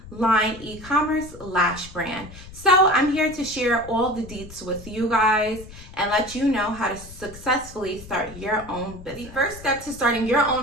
e-commerce lash brand. So I'm here to share all the deets with you guys and let you know how to successfully start your own business. The first step to starting your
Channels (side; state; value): left; noise; rumble, 16 dB below the sound